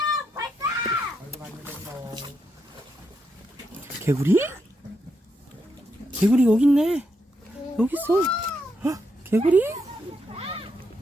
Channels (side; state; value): both; normal; correlation 0.81